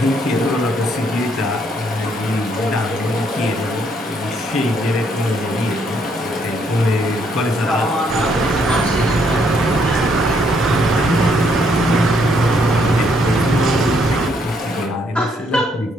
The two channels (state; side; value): normal; both; correlation 0.71